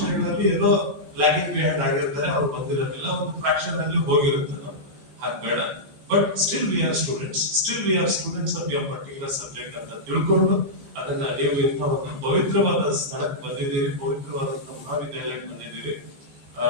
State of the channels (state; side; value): late; left; 15 ms